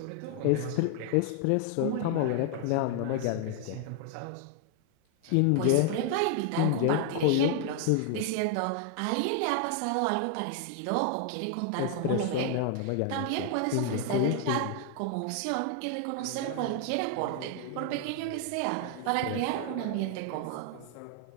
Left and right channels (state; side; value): different; both; correlation 0.00